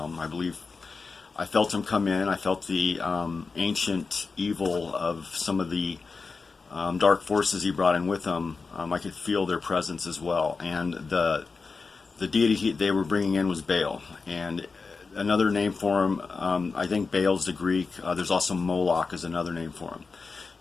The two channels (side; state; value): right; quieter; 4.5 dB